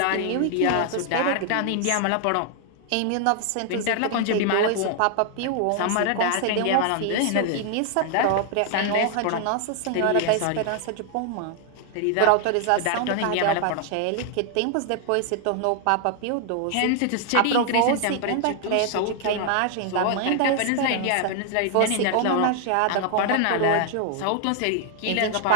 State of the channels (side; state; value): both; different; correlation 0.00